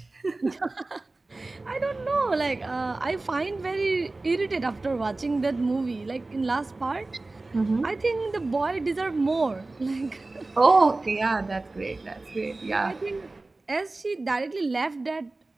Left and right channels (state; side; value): quieter; left; 3.2 dB